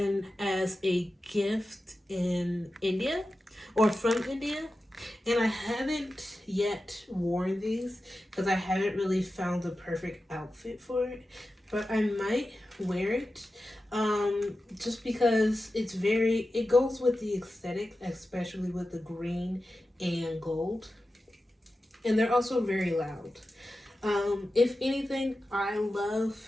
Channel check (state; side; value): normal; both; correlation 0.93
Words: as a gift in India or from India. And I haven't yet worn these because I haven't really found the perfect outfit for it. But I might wear it just because it goes with the aesthetic, especially with the green and gold. And they're also very loud. If anything, I love